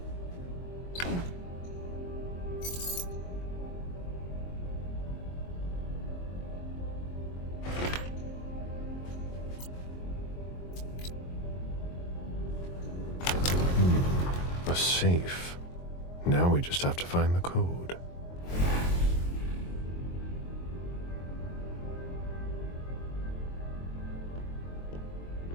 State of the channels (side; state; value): right; late; 22 ms